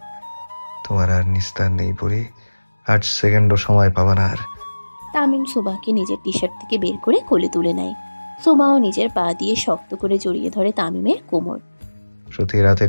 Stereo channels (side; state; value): both; inverted; correlation -1.00